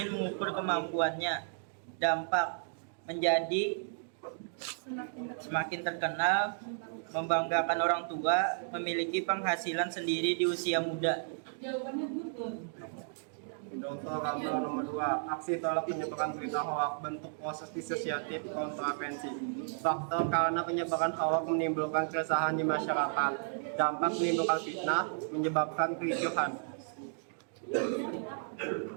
mengukur kemampuannya. Dampak menjadi semakin terkenal, membanggakan orang tua, memiliki penghasilan sendiri di usia muda. Contoh gambar nomor 2, aksi tolak penyebaran berita hoak, bentuk proses disosiatif kontravensi. Faktor karena penyebaran hoak menimbulkan keresahan di masyarakat. Dampak menimbulkan fitnah, menyebabkan kericuhan.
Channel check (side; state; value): left; silent; digital silence